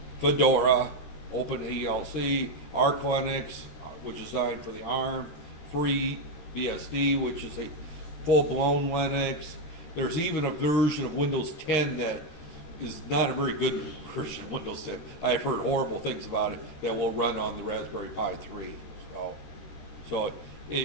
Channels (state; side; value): late; right; 13 ms